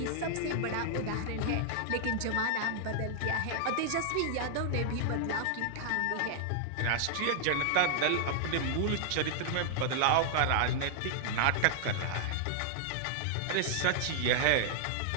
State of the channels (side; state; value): both; different; correlation -0.01